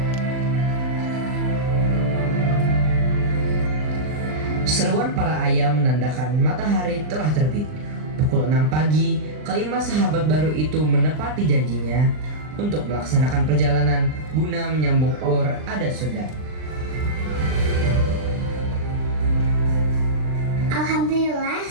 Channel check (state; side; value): late; left; 39 ms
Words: Seruan para ayam menandakan matahari telah terbit. Pukul 6 pagi, kelima sahabat baru itu menepati janjinya untuk melaksanakan perjalanan guna menyambung Or Adat Sunda. Alhamdulillah